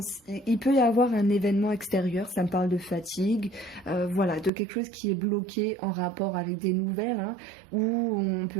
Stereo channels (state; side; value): drops out; left; at 4.5 s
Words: il peut y avoir un événement extérieur, ça me parle de fatigue, voilà, de quelque chose qui est bloqué en rapport avec des nouvelles, hein, où on